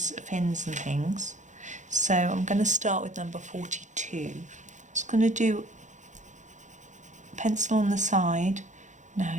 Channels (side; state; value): left; late; 0.35 ms